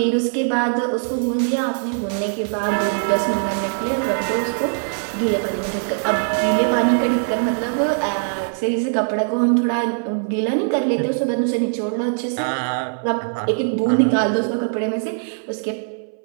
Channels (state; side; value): silent; left; 62 dB below the other